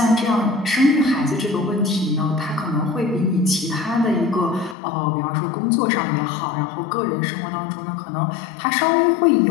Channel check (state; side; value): drops out; right; at 4.8 s